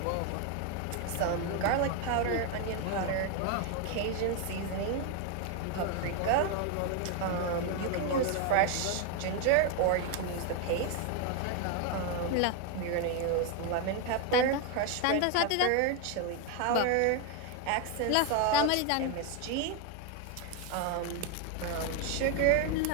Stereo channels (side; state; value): both; different; correlation 0.01